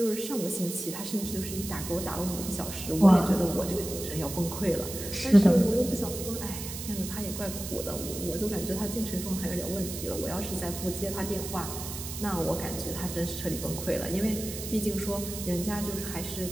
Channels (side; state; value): right; noise; hiss, 8 dB below the sound